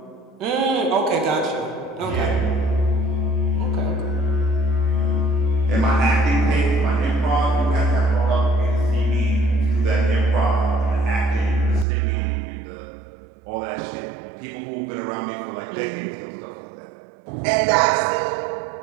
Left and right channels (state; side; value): drops out; left; at 11.9 s